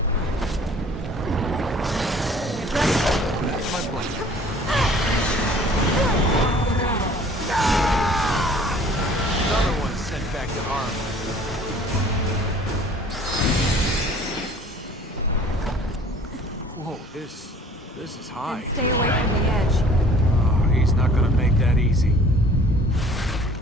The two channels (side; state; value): both; normal; correlation 0.52